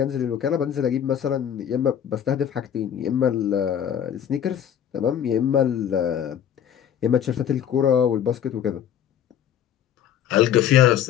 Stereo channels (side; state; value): right; quieter; 9.6 dB